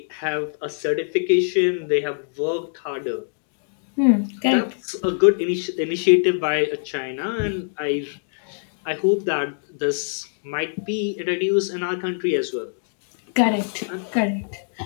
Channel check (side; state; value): right; silent; digital silence